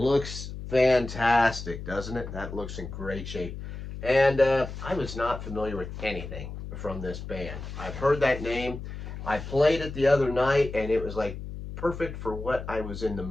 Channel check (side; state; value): left; noise; hum, 9 dB below the sound